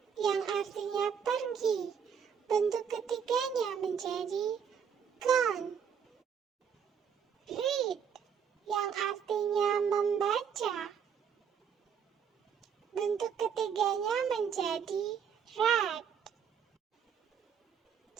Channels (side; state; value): left; quieter; 7.4 dB